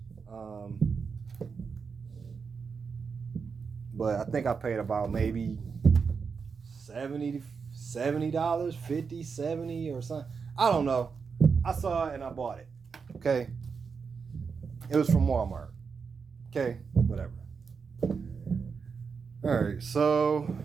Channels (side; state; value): left; quieter; 5.6 dB